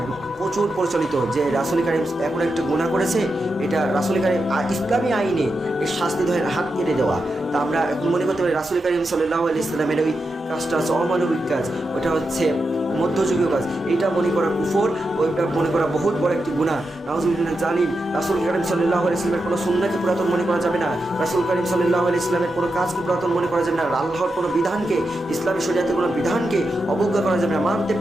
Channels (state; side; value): normal; both; correlation 0.87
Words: প্রচুর প্রচলিত যে রাসূল কারীম এখন একটা গুনাহ করেছে, এটা রাসূল কারীম ইসলামী আইনে এর শাস্তি ধরে হাত কেটে দেওয়া। তা আমরা মনে করতে পারি রাসূল কারীম সাল্লাল্লাহু আলাইহি ওয়াসাল্লামের ওই কাজটা হচ্ছে অমানবিক কাজ, ওটা হচ্ছে মধ্যযুগীয় কাজ, এইটা মনে করা কুফর, ওইটা মনে করা বহুত বড় একটি গুনাহ। নাউজুবিল্লাহ জালিম। রাসূল কারীম সাল্লাল্লাহু আলাইহি ওয়াসাল্লামের কোনো সুন্নাহকে পুরাতন মনে করা যাবে না, রাসূল কারীম সাল্লাল্লাহু আলাইহি ওয়াসাল্লামের কোনো কাজকে পুরাতন মনে করা যাবে না, আল্লাহর কোনো বিধানকে, ইসলামী শরীয়তের কোনো বিধানকে অবজ্ঞা করা যাবে না। মানতে